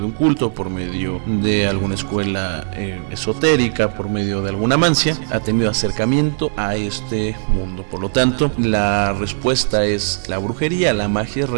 un culto, por medio de alguna escuela esotérica, por medio de alguna mancia, ha tenido acercamiento a este mundo. Por lo tanto, la respuesta es: la brujería, la magia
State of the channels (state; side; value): silent; left; digital silence